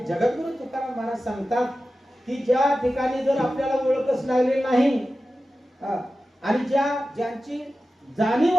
जगद्गुरु तुकाराम महाराज सांगतात की ज्या ठिकाणी जर आपल्याला ओळखच लागली नाही आणि ज्यांची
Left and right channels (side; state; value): both; normal; correlation 0.94